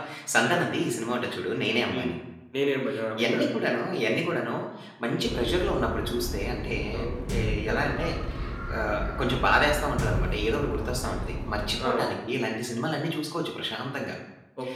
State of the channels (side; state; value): both; identical; correlation 1.00